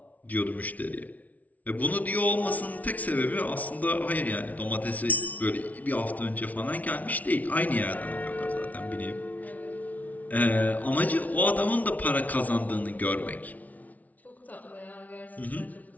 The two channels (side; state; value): right; late; 0.073 ms